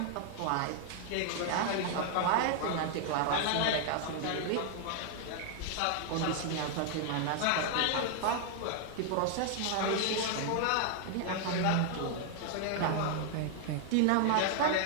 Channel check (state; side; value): different; both; correlation 0.00